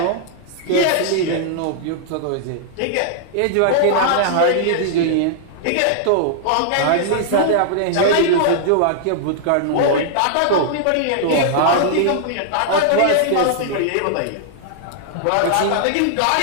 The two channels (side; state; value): both; different; correlation -0.01